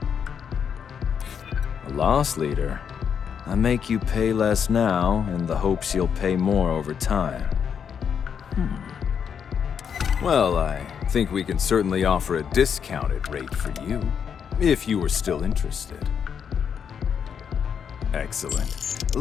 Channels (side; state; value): right; quieter; 7.4 dB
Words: A loss leader. I make you pay less now in the hopes you'll pay more over time. Well, I think we can certainly offer a discounted rate for you. If you were still interested. Excellent.